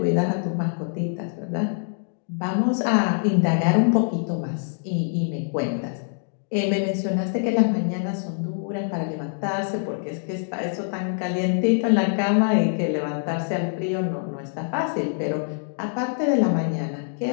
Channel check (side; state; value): right; silent; digital silence